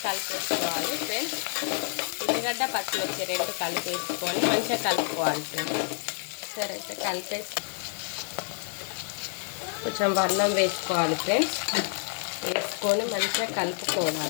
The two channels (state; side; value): silent; right; 56 dB below the other